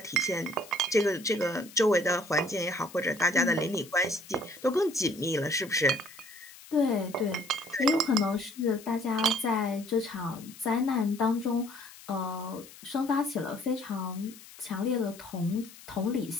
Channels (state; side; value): noise; left; hiss, 19 dB below the sound